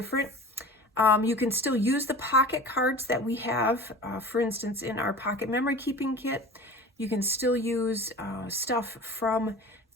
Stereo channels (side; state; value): both; normal; correlation 0.38